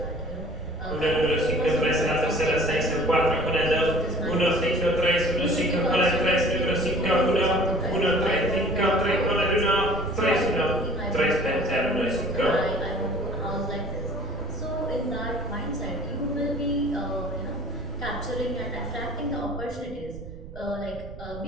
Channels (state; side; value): noise; right; rumble, 13 dB below the sound